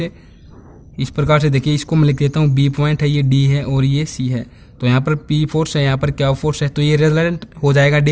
इस प्रकार से देखिए, इसको मैं लिख देता हूँ B पॉइंट है, ये D है और ये C है। तो यहाँ पर P फोर्स है, यहाँ पर Q फोर्स है, तो ये रिजल्ट हो जाएगा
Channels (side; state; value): both; identical; correlation 1.00